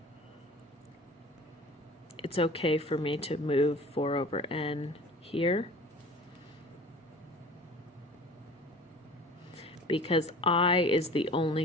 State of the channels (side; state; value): both; normal; correlation 0.43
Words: it's okay for me to move 4 over n here, because I is the